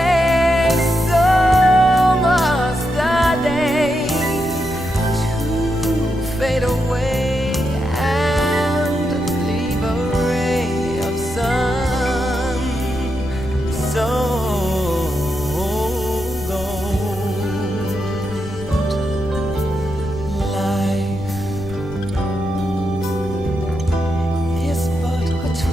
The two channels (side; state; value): left; noise; rumble, 11 dB below the sound